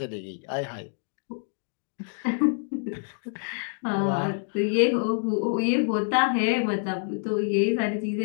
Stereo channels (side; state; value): right; silent; digital silence